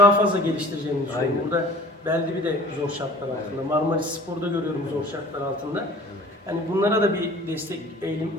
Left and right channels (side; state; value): both; normal; correlation 0.46